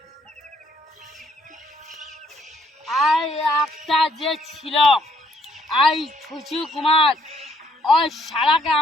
আই একটা যে ছিল আই ছুচু কুমার ওই শালাকে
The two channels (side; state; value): both; normal; correlation 0.68